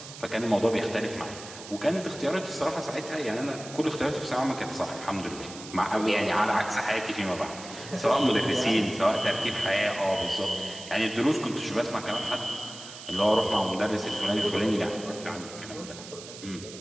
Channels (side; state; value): right; noise; hiss, 14 dB below the sound